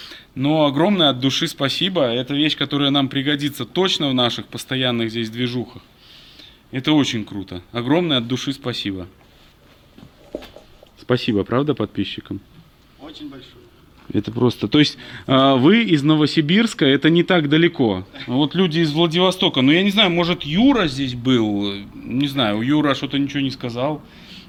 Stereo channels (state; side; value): identical; both; correlation 1.00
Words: Но огромное от души спасибо. Это вещь, которая нам пригодится точно в наших постоянных здесь движухах. Это очень круто. Огромное от души спасибо. Спасибо, правда, подписчикам? Очень большой. Это просто... То есть вы из Новосибирска, это не так далеко. Вот люди из Владивостока. Ну, я не знаю, может, Юра здесь был. Не знаю, Юра что-то ничего не сказал.